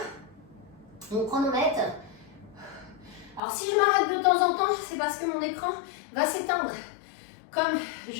Mon chronomètre. Alors si je m'arrête de temps en temps, c'est parce que mon écran va s'éteindre. Comme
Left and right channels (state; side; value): drops out; right; at 3.4 s